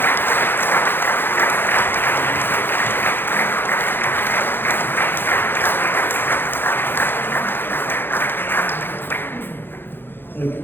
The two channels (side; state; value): right; late; 0.10 ms